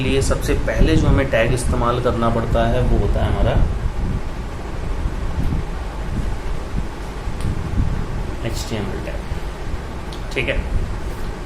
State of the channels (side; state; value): both; identical; correlation 1.00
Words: सबसे पहले जो हमें टैग इस्तेमाल करना पड़ता है वो होता है हमारा HTML टैग, ठीक है।